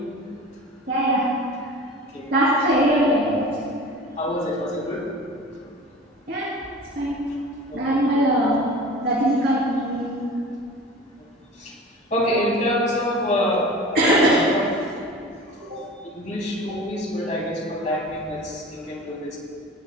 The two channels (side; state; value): both; normal; correlation 0.38